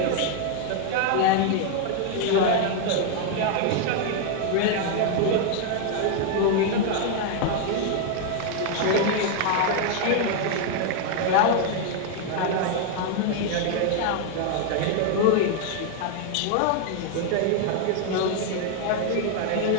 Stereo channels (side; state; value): both; different; correlation 0.00